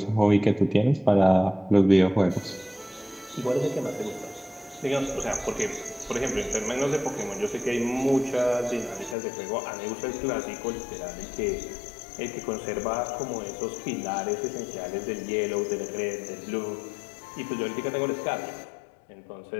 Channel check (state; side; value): drops out; right; at 9.2 s